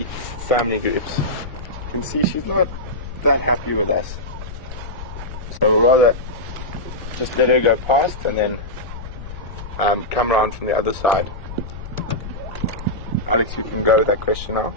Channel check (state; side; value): noise; left; rumble, 11 dB below the sound